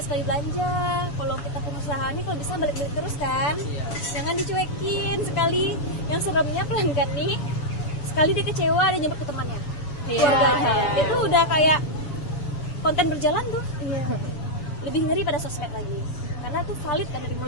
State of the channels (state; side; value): late; right; 7.1 ms